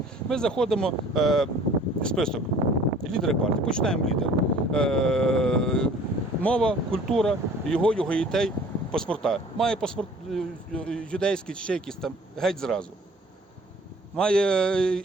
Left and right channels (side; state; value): both; normal; correlation 0.51